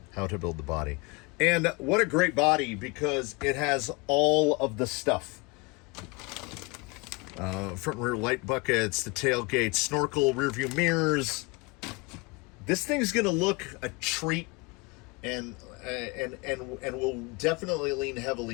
how to build the body. And what a great body, because it has all of the stuff. Front and rear light buckets, the tailgate, snorkel, rear view mirrors. This thing's gonna look a treat, and will definitely lean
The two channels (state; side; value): quieter; right; 26.8 dB